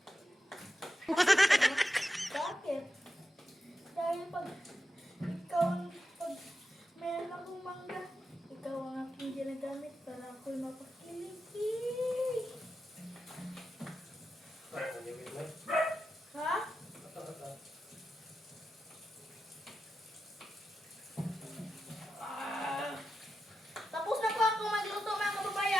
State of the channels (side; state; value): both; normal; correlation 0.89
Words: Bakit? Dahil pag meron akong mangga, ikaw ang aking ginagamit para ako'y mapakiliki. Ha? Tapos na po ako magluto mga